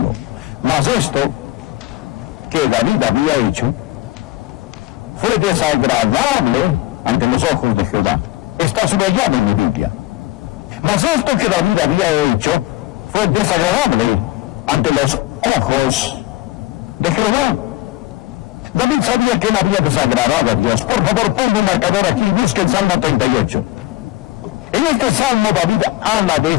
Mas esto que David había hecho fue desagradable ante los ojos de Jehová. Está subrayado en mi Biblia. Mas esto que David había hecho fue desagradable ante los ojos de Jehová. David sabía que él había desagradado a Dios. Por favor, ponga un marcador aquí y busque el Salmo 38. En este Salmo David habla de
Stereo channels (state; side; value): quieter; right; 17.6 dB